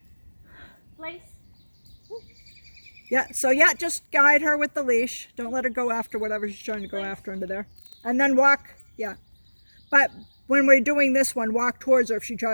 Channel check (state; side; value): inverted; both; correlation -1.00